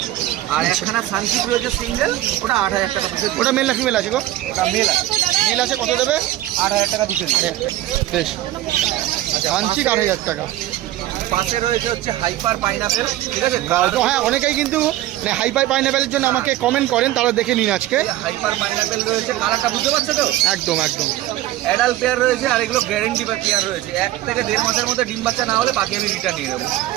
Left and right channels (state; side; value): quieter; left; 14.8 dB